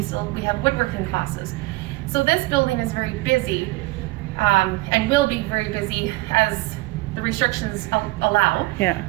have woodworking classes. So this building is very busy, and will be very busy as the restrictions allow. Yeah.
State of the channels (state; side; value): quieter; left; 21.3 dB